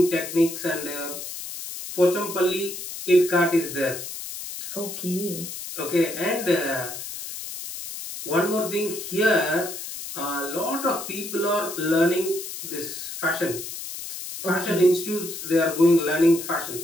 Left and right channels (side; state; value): left; noise; hiss, 9 dB below the sound